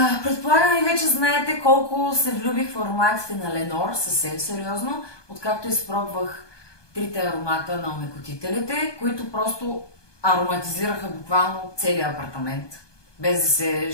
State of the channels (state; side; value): late; right; 1.2 ms